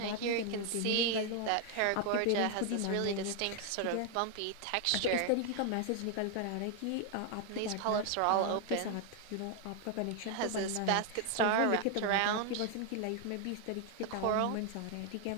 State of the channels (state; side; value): different; both; correlation 0.00